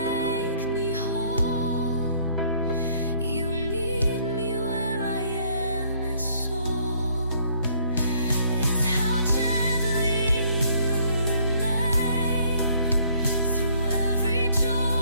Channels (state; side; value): inverted; both; correlation -0.63